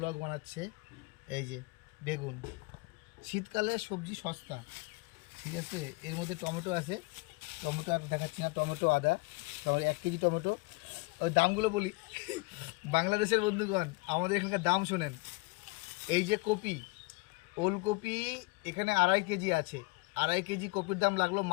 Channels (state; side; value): quieter; right; 25.7 dB